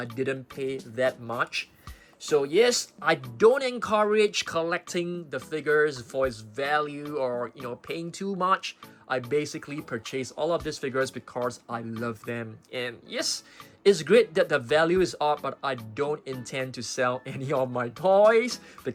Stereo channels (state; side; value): identical; both; correlation 1.00